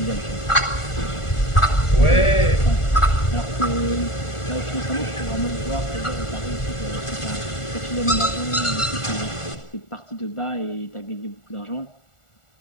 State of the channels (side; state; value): right; late; 1.4 ms